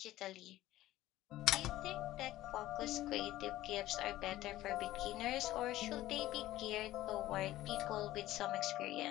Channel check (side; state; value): right; quieter; 15.4 dB